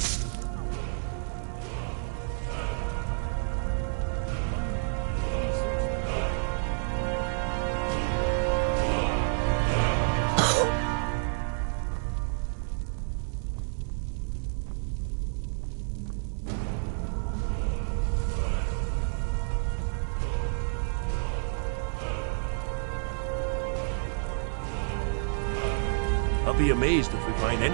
I'll be amazed if we find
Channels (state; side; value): silent; left; digital silence